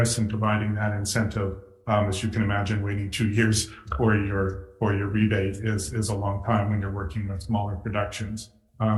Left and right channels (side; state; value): both; identical; correlation 1.00